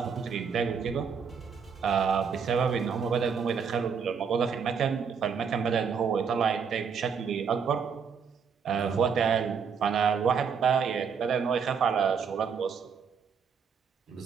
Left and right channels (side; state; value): left; quieter; 6.4 dB